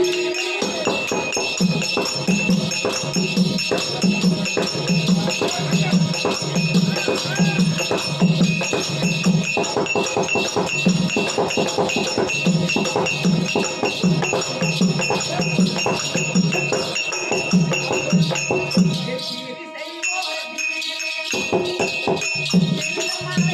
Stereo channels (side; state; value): both; identical; correlation 1.00